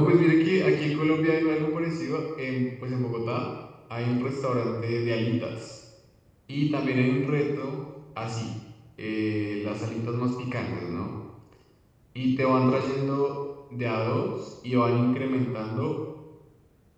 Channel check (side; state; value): both; identical; correlation 1.00